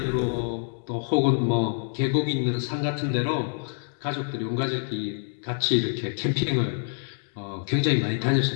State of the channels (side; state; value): right; silent; digital silence